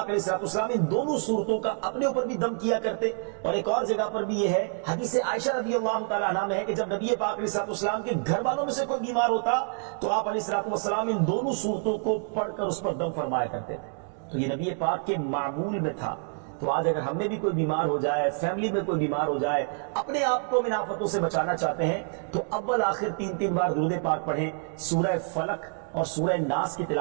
علیہ السلام ان دونوں صورتوں کا اپنے اوپر بھی دم کیا کرتے۔ اور ایک اور جگہ پر بھی یہ ہے، حدیث عائشہ رضی اللہ تعالیٰ عنہ میں ہے کہ جب نبی پاک علیہ السلام کے گھر والوں میں سے کوئی بیمار ہوتا تو آپ علیہ السلام ان دونوں صورتوں کو پڑھ کر اس پر دم فرمایا کرتے تھے۔ تو یہ نبی پاک کے معمول میں تھا۔ تو آج اگر ہم میں بھی کوئی بیمار ہو جائے، فیملی میں کوئی بیمار ہو جائے، اپنے آپ کو من آفتوں سے بچانا چاہتے ہیں تو اول آخر 3 بار درود پاک پڑھیں، سورہ فلق اور سورہ ناس کی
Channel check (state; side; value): silent; left; 55 dB below the other